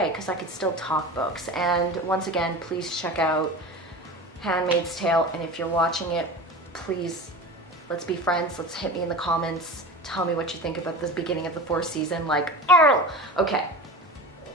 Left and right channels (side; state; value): both; normal; correlation 0.33